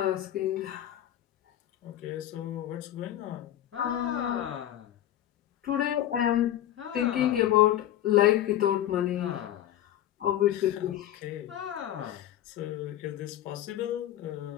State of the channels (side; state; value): right; quieter; 12.4 dB